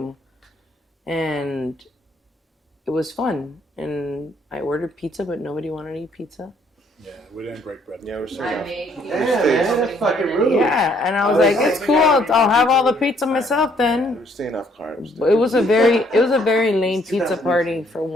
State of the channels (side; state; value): both; normal; correlation 0.66